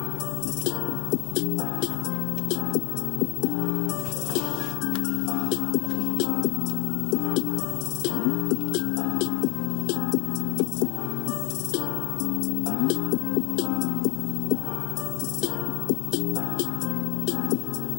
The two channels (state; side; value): quieter; right; 27.2 dB